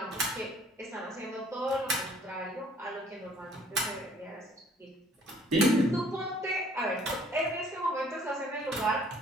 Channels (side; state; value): both; normal; correlation 0.58